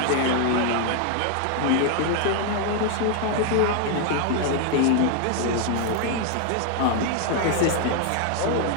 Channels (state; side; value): different; both; correlation 0.00